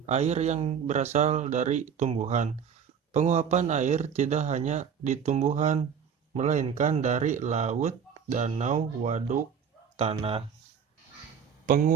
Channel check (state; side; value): quieter; left; 7.3 dB